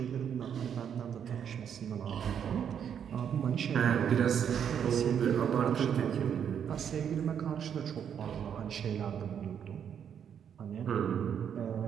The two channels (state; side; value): quieter; left; 8.3 dB